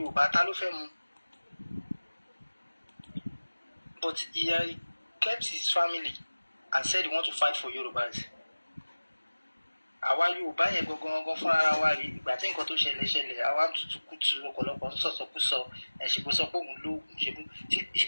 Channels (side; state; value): both; inverted; correlation -1.00